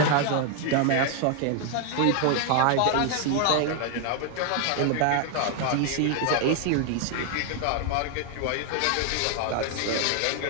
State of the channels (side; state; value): both; different; correlation 0.00